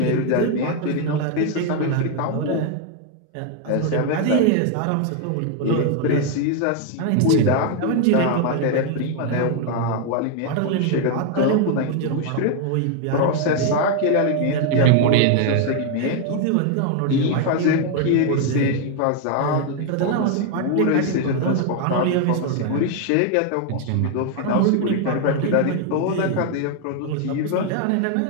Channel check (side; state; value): both; different; correlation 0.01